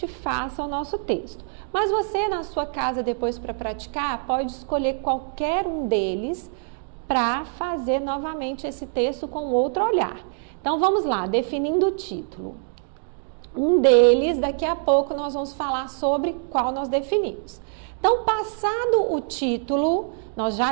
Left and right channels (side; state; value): left; silent; 62 dB below the other